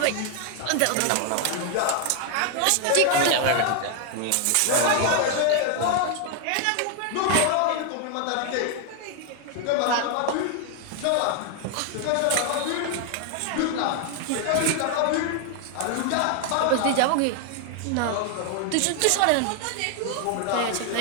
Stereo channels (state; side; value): different; both; correlation 0.00